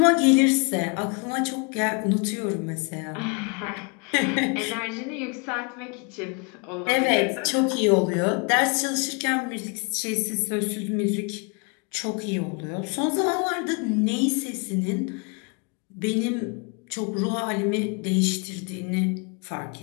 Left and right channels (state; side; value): quieter; right; 33.8 dB